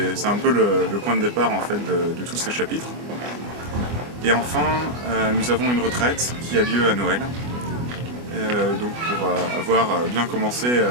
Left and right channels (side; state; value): left; late; 24 ms